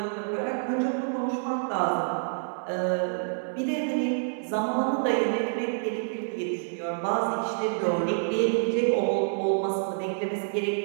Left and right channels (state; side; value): silent; left; 60 dB below the other